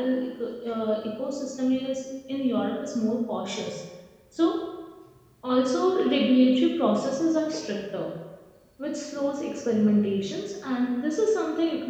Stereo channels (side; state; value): both; identical; correlation 1.00